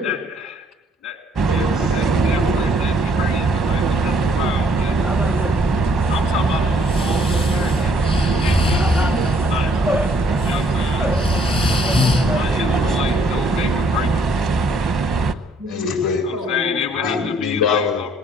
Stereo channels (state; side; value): normal; both; correlation 0.65